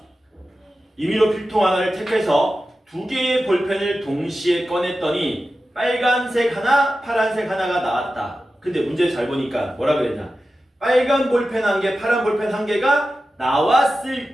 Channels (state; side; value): normal; both; correlation 0.93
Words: 임의로 필통 하나를 택해서 두 개의 볼펜을 동시에 꺼냈더니 빨간색 하나, 파란색 하나가 나왔다. 근데 문제 잘 보니까 뭐라 그랬냐? 빨간 볼펜 한 개, 파란 볼펜 한 개가